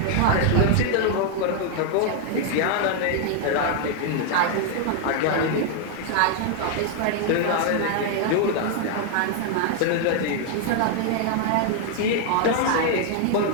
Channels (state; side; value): different; both; correlation 0.00